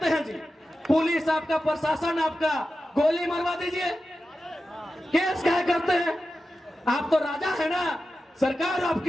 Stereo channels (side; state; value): both; normal; correlation 0.92